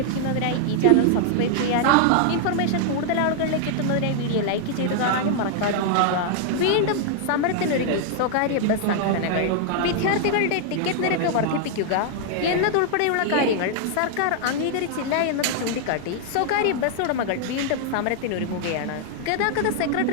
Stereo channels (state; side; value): different; both; correlation 0.00